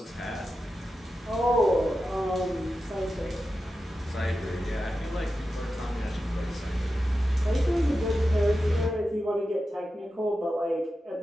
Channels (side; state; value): both; normal; correlation 0.91